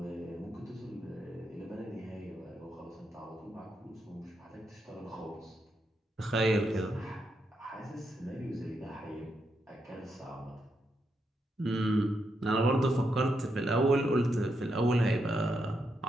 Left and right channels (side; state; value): both; normal; correlation 0.82